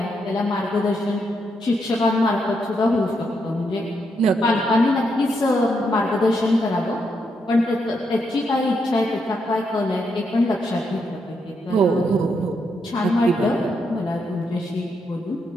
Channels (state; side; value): normal; both; correlation 0.80